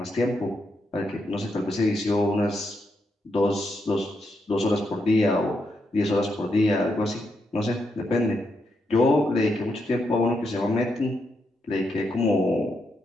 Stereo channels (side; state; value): both; normal; correlation 0.81